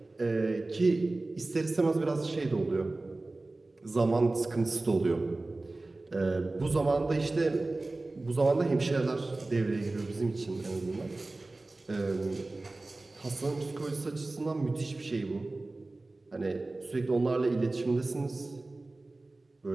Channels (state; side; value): quieter; left; 3.1 dB